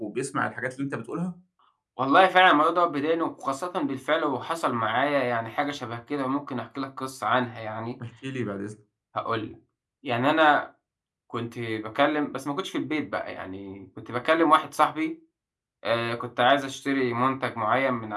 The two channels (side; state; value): both; identical; correlation 1.00